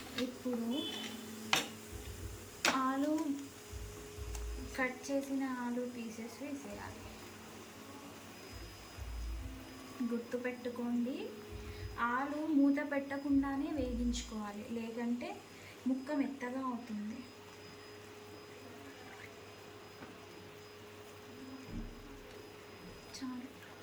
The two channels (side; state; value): both; identical; correlation 1.00